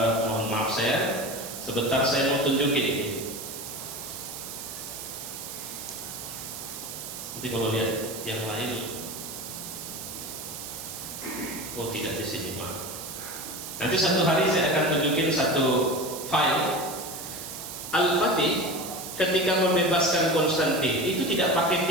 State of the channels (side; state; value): right; noise; hiss, 9 dB below the sound